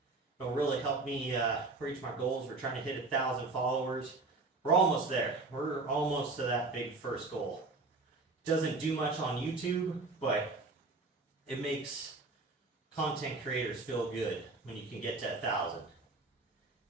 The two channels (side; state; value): left; quieter; 3.5 dB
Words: It'll really help me reach my goals. We're trying to hit 1,000 followers. We're almost there. We're almost to that big first goal. Doesn't do much on YouTube, but it makes content creators feel good when you can get to 1,000.